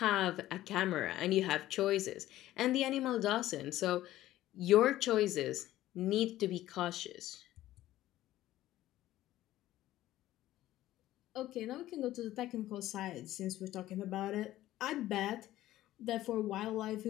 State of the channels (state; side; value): quieter; right; 14.7 dB